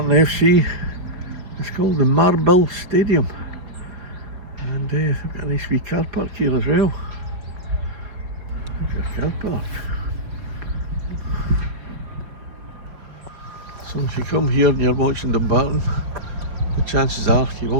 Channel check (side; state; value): left; late; 5.4 ms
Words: FC. It's called the Marble Stadium, and they've got a nice wee car park here as well. There's your car park. So if you come here and you're watching Dumbarton, the chances are you